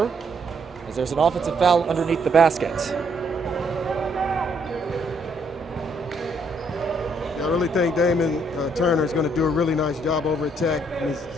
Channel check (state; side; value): normal; both; correlation 0.70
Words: as there's an offensive foul underneath the basket. I really think Damon Turner is going to do a really nice job over at Tech. It's